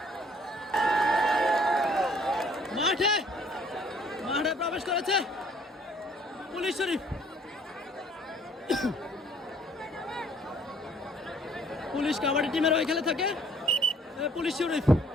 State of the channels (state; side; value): normal; both; correlation 0.59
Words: মাঠে প্রবেশ করেছে পুলিশ শরীফ পুলিশ কাবাডি টিমের ওই খেলে থাকে পুলিশ শরীফ